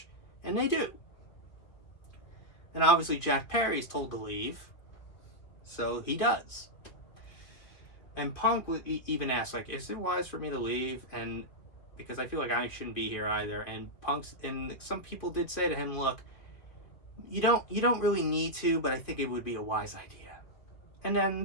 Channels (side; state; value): right; late; 2.2 ms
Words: And they do. And obviously Jack Perry is told to leave. So he does. And Punk even asked, is it wise for me to leave? And because I feel like I shouldn't be here either. And some people did say to him, look, you don't really need to, but I think it would be a wise idea. And